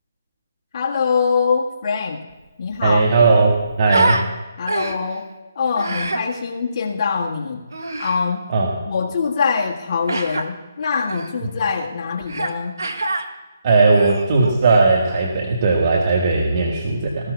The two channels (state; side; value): inverted; both; correlation -0.76